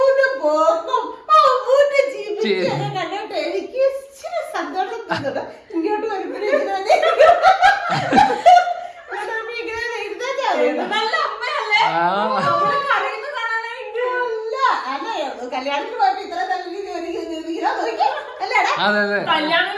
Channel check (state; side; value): identical; both; correlation 1.00